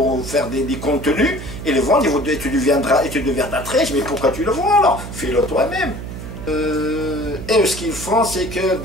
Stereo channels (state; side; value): noise; right; hum, 10 dB below the sound